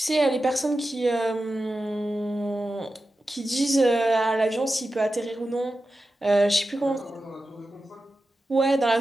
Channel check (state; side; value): normal; both; correlation 0.92